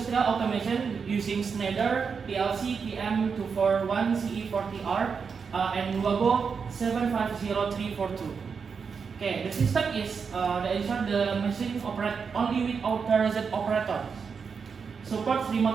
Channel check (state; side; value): quieter; left; 5.8 dB